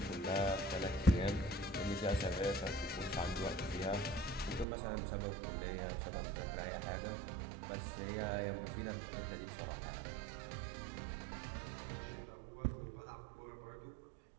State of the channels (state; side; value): drops out; left; at 4.7 s